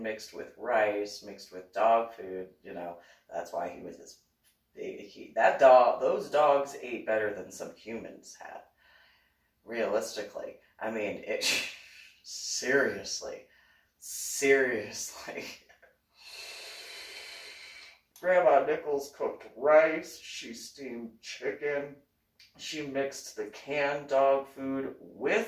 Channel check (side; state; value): both; identical; correlation 1.00